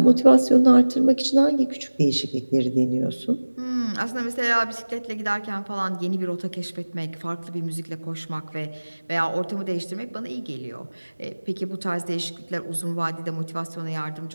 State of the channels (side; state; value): both; inverted; correlation -1.00